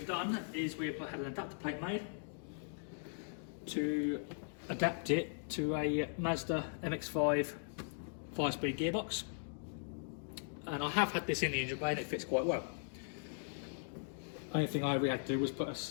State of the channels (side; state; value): right; silent; digital silence